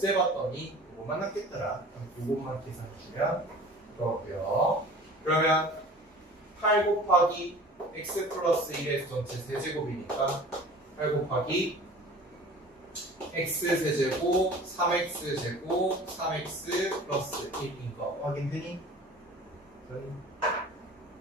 요거만 남겠더라. 요것만 계산해주면 그거고요. 그러면 8 곱하기 x 플러스 1의 전체 세제곱이니까 8 곱하기 x 세제곱 3x 제곱 3x 플러스 1인 거 확인되니?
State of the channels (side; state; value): both; normal; correlation 0.43